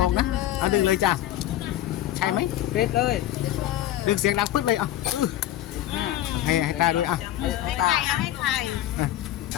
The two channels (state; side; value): quieter; right; 13.2 dB